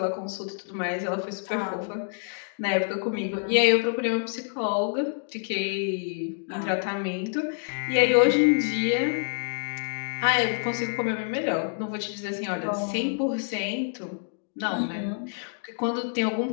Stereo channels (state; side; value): silent; right; digital silence